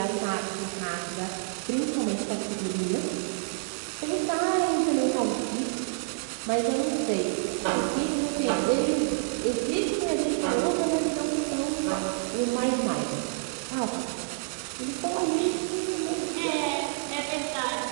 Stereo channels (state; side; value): silent; left; digital silence